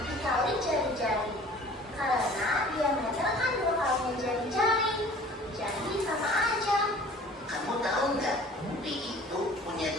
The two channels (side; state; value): both; normal; correlation 0.48